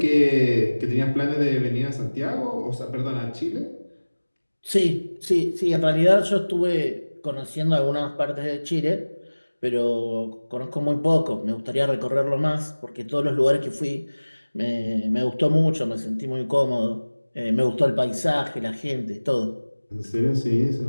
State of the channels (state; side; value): inverted; both; correlation -1.00